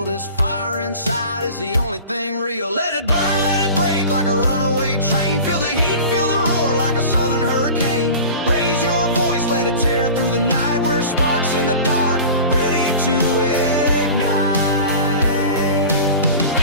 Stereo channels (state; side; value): inverted; both; correlation -0.37